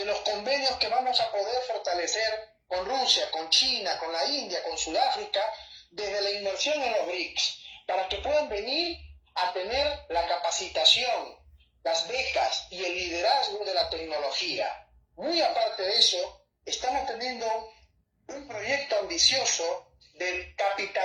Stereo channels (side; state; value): both; identical; correlation 1.00